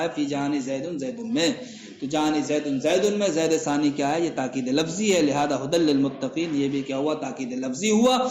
ہے، فی جان زید زید میں، تو جان زید میں زید ثانی کیا ہے؟ یہ تاکید لفظی ہے، لہذا ھدی للمتقین یہ بھی کیا ہوا؟ تاکید لفظی ہوا۔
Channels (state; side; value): identical; both; correlation 1.00